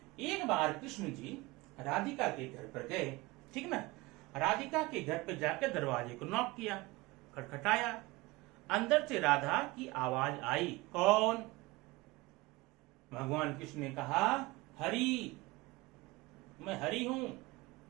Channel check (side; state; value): left; quieter; 22.1 dB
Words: एक बार कृष्ण जी राधिका के घर पर गए। ठीक ना। राधिका के घर पर जाकर दरवाजे को नॉक किया, खटखटाया। अंदर से राधा की आवाज आई। कौन? भगवान कृष्ण ने कहा, हरि, मैं हरि हूं।